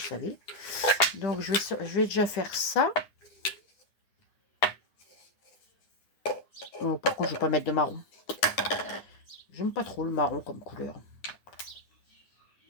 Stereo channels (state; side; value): late; right; 9.9 ms